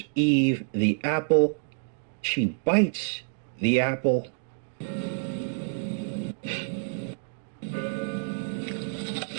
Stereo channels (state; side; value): silent; left; 59 dB below the other